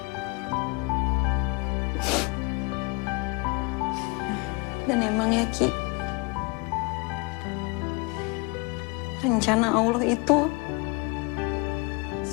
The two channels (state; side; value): quieter; right; 28.0 dB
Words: Dan emang ya, Ki, rencana Allah itu